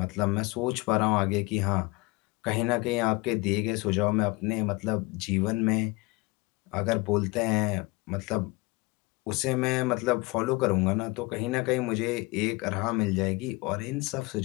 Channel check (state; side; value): quieter; right; 24.1 dB